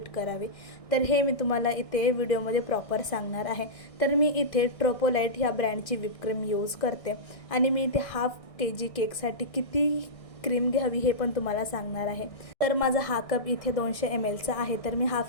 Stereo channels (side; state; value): right; late; 1.6 ms